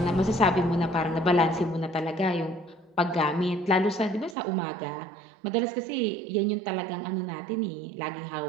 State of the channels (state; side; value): drops out; left; at 4.4 s